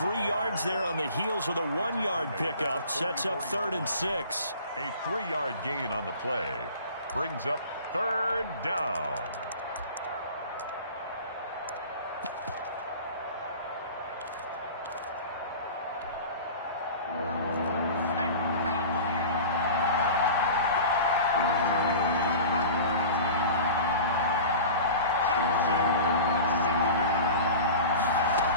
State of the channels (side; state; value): both; inverted; correlation -0.38